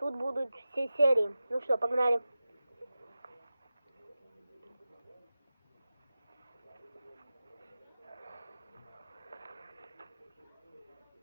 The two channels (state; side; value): inverted; both; correlation -0.94